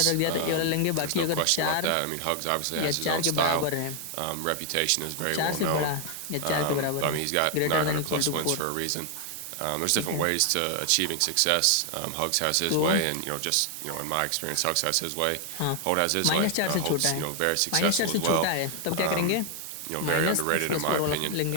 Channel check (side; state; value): both; different; correlation 0.00